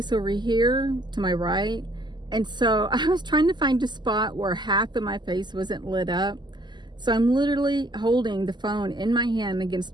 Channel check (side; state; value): left; late; 0.21 ms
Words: over here to my right, and so I was trying to find a spot where half of my face wasn't lit up. So I'm literally holding the phone in my hand